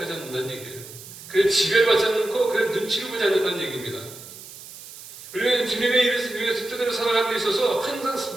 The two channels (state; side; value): noise; right; hiss, 16 dB below the sound